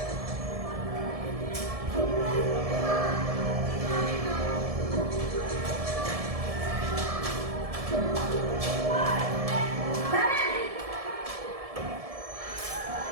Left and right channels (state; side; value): late; left; 1.7 ms